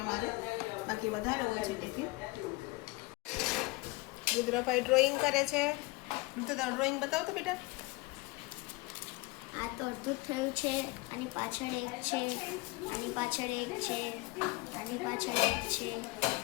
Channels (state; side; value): quieter; right; 23.0 dB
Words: અમારે, બાકી વધારે હોય છે ટિફિન। રુદ્રભાઈ ડ્રોઈંગ કરે છે। રુદ્ર ડ્રોઈંગ બતાવો તો બેટા। આ તો અડધું થયું છે, આની પાછળ એક છે, આની પાછળ એક છે, આની પાછળ એક છે,